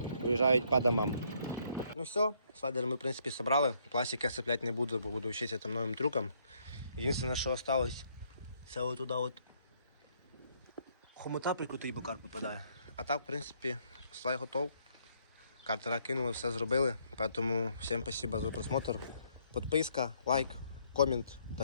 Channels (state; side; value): inverted; both; correlation -0.69